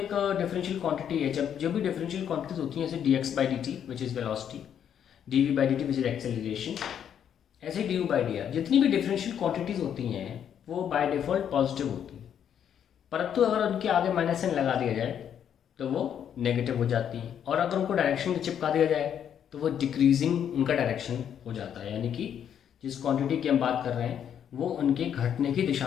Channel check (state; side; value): quieter; right; 9.0 dB